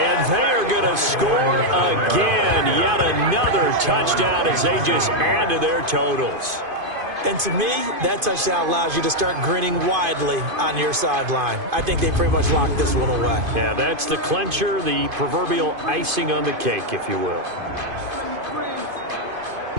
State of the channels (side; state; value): left; late; 2.5 ms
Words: they are going to score again. Yet another touchdown as they just add to their totals. And to me, that touchdown allows you to start grinning widely on your sideline. I think they pretty much locked this one away. Yeah, that's the clincher, the proverbial icing on the cake, if you will.